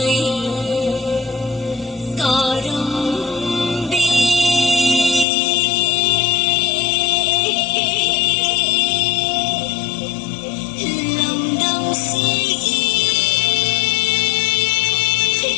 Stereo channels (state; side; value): drops out; right; at 5.2 s